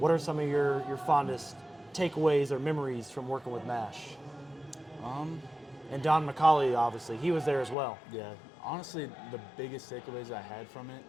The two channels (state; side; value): drops out; right; at 7.8 s